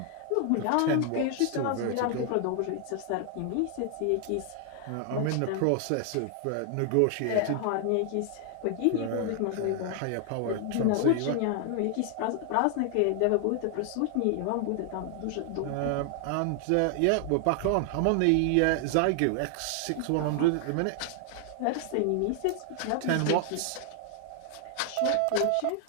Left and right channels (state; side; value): different; both; correlation 0.00